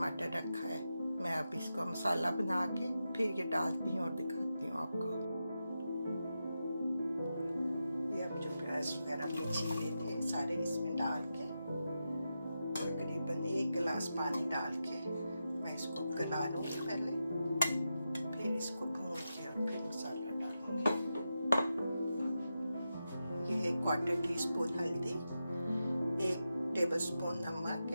रखा है। मैं अब इसको मसाला बना के फिर ये डालती हूँ और दिखाती हूँ आपको। ये अब जो प्याज वगैरह में छीले थे सारे इसमें डाल के तकरीबन 1 गिलास पानी डाल के मैं इसको गला लूँगी पहले, फिर इसको भून के और फिर मसाला डालूँगी। ये 1/4 टीस्पून हल्दी, 1 टेबलस्पून नमक,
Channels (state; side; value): inverted; both; correlation -0.89